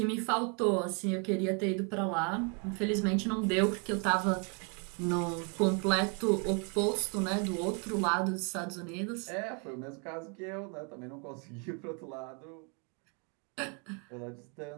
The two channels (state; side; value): quieter; left; 36.2 dB